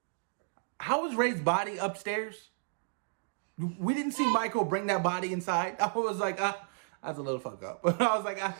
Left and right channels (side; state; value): left; silent; digital silence